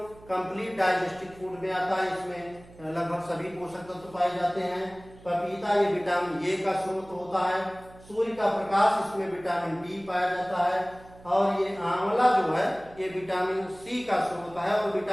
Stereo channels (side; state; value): right; noise; hum, 22 dB below the sound